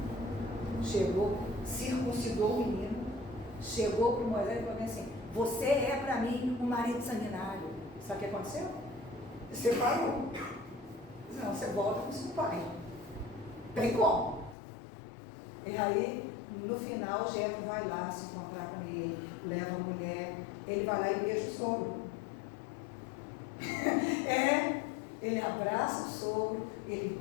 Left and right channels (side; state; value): right; drops out; at 14.6 s